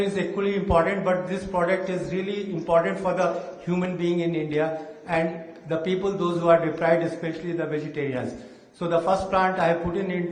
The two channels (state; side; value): identical; both; correlation 1.00